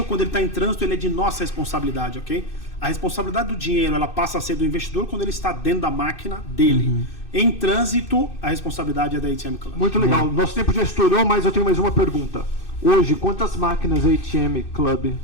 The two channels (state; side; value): late; right; 2.6 ms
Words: quando ele está em trânsito, ele é de nossa responsabilidade, ok? A responsabilidade do dinheiro, ela passa a ser do investidor quando ele está dentro da máquina dele. Em trânsito, a responsabilidade é da ATM Club. Muito legal. Nosso tempo já estourou, mas eu tenho mais uma pergunta. Hoje, quantas máquinas a ATM Club